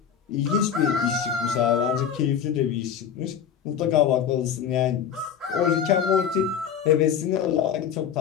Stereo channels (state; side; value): quieter; right; 8.1 dB